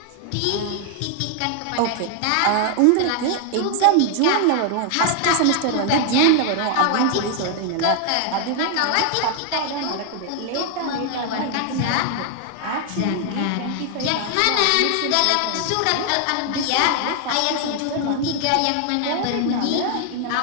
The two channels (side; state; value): both; different; correlation 0.00